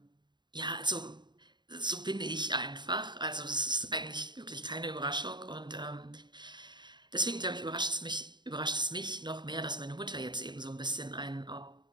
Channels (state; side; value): late; left; 0.22 ms